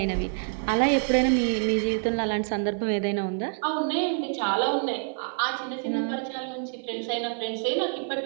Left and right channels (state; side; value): silent; left; 55 dB below the other